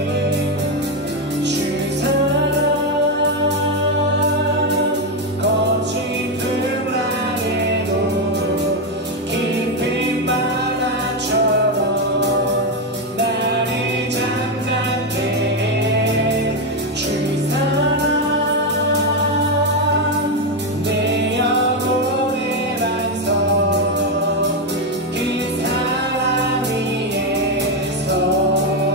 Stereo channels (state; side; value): normal; both; correlation 0.07